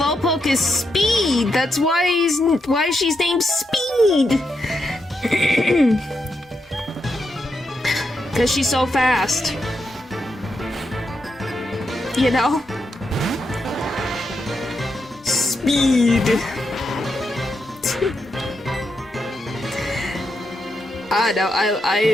is speed. That's why she's named Speed. Cause she's so fast. You know? Speed. No,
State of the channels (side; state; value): both; normal; correlation 0.83